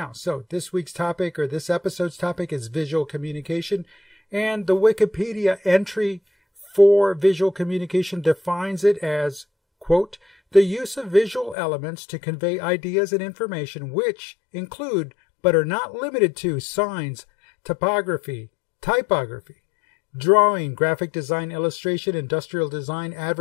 so this week's topic, or this episode's topic, is visual communication. And the Wikipedia entry for visual communication defines it as, quote, the use of visual elements to convey ideas and information which include, but are not limited to, signs, typography, drawing, graphic design, illustration, industrial design,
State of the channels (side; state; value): right; drops out; at 11.6 s